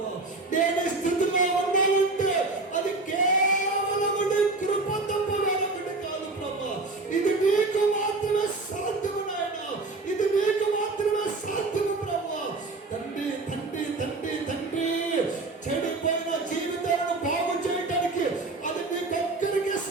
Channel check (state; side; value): quieter; left; 3.4 dB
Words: నేను ఈ స్థితిలో ఉండాలంటే అది కేవలం కృప తప్ప వేరొకటి కాదు ప్రభువా. ఇది నీకు మాత్రమే సాధ్యము నాయన, ఇది నీకు మాత్రమే సాధ్యము ప్రభువా. తండ్రి తండ్రి తండ్రి తండ్రి, చెడిపోయిన జీవితాలను బాగు చేయడానికి అది నీకొక్కరికి